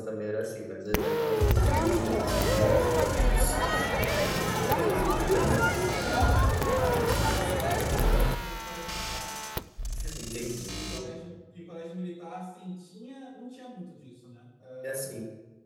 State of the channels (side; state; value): both; identical; correlation 1.00